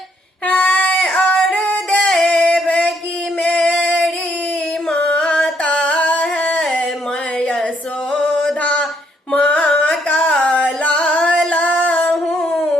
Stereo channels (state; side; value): normal; both; correlation 0.71